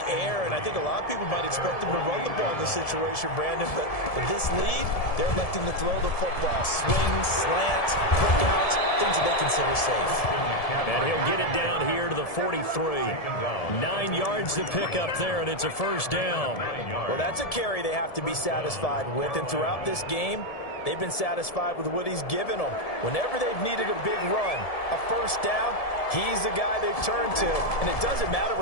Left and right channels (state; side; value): late; right; 1.7 ms